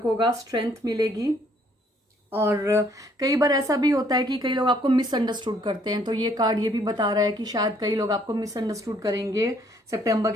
होगा, स्ट्रेंथ मिलेगी। और कई बार ऐसा भी होता है कि कई लोग आपको मिसअंडरस्टूड करते हैं, तो ये कार्ड ये भी बता रहा है कि शायद कई लोग आपको मिसअंडरस्टूड करेंगे सितंबर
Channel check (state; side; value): normal; both; correlation 0.65